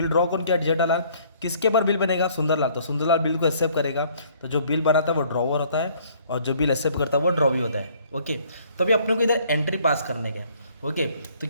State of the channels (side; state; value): both; inverted; correlation -0.60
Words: ड्रॉ कौन किया? जेठालाल। किसके पर बिल बनेगा? सुंदरलाल। तो सुंदरलाल बिल को एक्सेप्ट करेगा। तो जो बिल बनाता है वो ड्रॉवर होता है, और जो बिल एक्सेप्ट करता है वो ड्रॉवी होता है। ओके, तो अभी अपने को इधर एंट्री पास करने का। ओके, तो